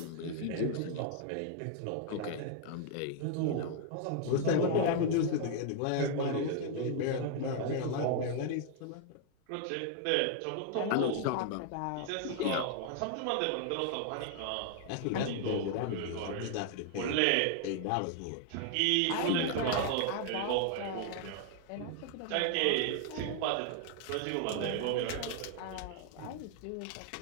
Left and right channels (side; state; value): both; different; correlation 0.00